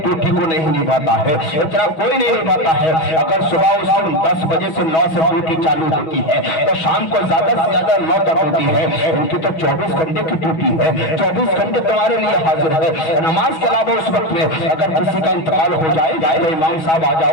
को नहीं निभाता है, इतना कोई नहीं निभाता है। अगर सुबह उसकी 10 बजे से 9 से ड्यूटी चालू होती है तो शाम को ज्यादा से ज्यादा 9 तक होती है। उनकी तो 24 घंटे की ड्यूटी है, 24 घंटे तुम्हारे लिए हाजिर है। नमाज के अलावा उस वक्त में अगर किसी का इंतकाल हो जाए तो इमाम साहब आ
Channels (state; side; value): late; right; 6.2 ms